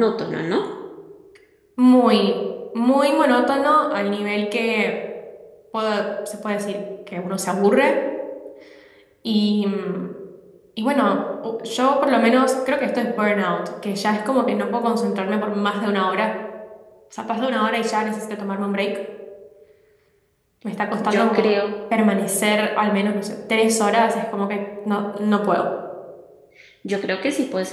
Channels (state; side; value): identical; both; correlation 1.00